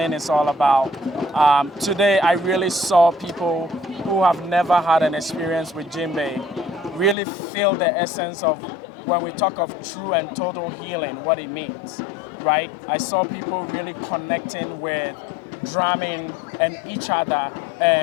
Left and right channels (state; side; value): drops out; right; at 7.2 s